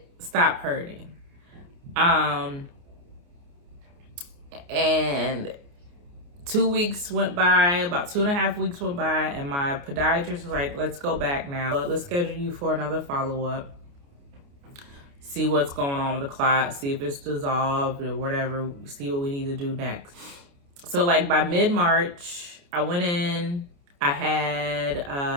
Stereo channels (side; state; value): left; late; 29 ms